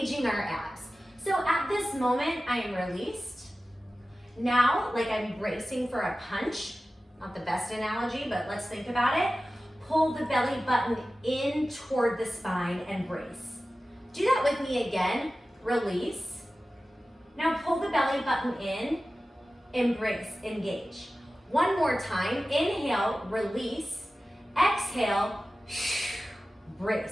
our abs. So at this moment, I am released. Now, like I'm bracing for a punch, not the best analogy, but let's think about it. Pull the belly button in toward the spine and brace. Do that with me again, release. Now pull the belly button in, embrace, engage. One more time, inhale, release, exhale,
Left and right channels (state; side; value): normal; both; correlation 0.95